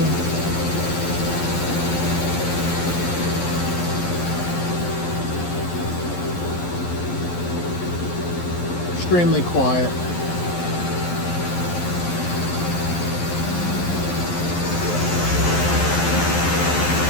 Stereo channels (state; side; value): late; right; 11 ms